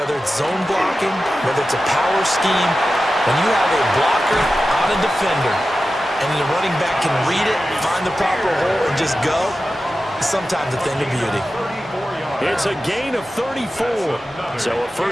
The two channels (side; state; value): both; normal; correlation 0.93